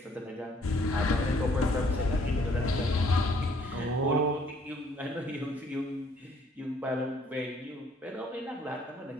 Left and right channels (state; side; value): normal; both; correlation 0.62